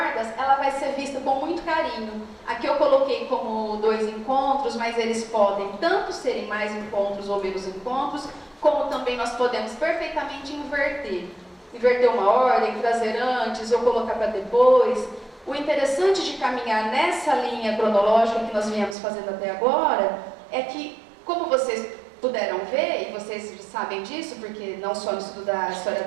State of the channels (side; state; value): left; drops out; at 18.9 s